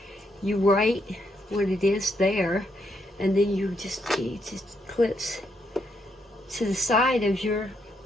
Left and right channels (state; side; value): normal; both; correlation 0.77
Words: you write what it is there, and then it just clips to the side of your